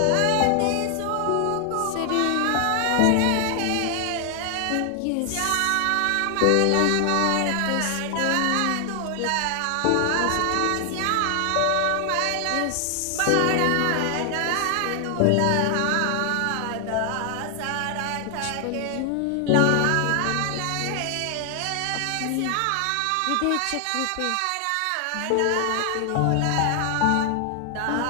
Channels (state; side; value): different; both; correlation 0.00